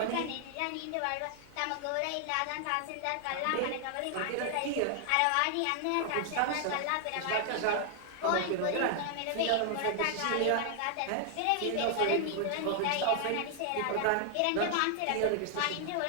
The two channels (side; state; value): both; different; correlation 0.00